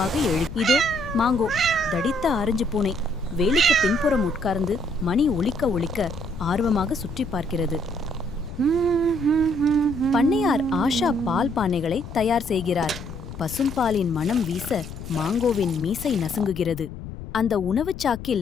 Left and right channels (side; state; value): left; noise; rumble, 11 dB below the sound